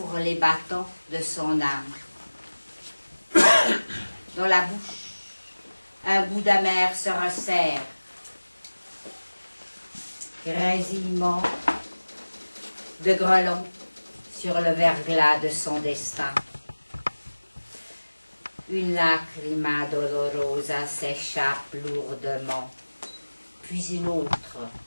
les battants de son âme. Dans la bouche, un goût d'amer se resserre. Grésillement de grelons sur le verglas de son destin. Une lacrima dolorosa s'échappe lourdement, puis une autre,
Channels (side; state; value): both; inverted; correlation -1.00